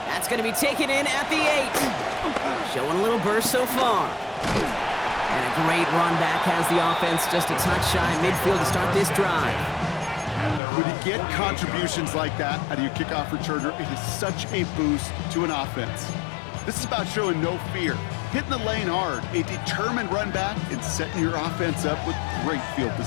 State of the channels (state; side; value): drops out; right; at 10.6 s